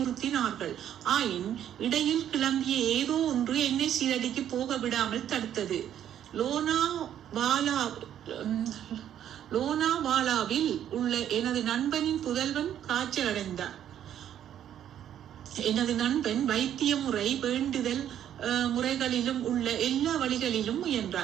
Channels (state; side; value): quieter; left; 10.4 dB